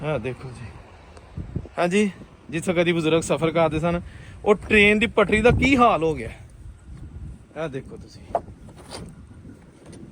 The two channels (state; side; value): identical; both; correlation 1.00